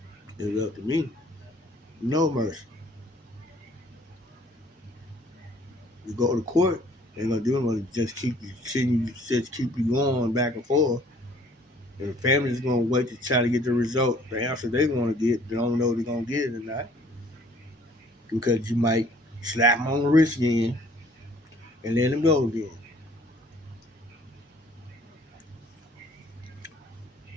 It's up to me. No mercy. You go to court, they ain't gonna do nothing. Just keep you sitting, just keep you going back and forth. And the family's gonna wait to try to get the result, the answer they want to get. They don't know if they're gonna get it or not because you might slap them on the wrist again and let them go again.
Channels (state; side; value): normal; both; correlation 0.57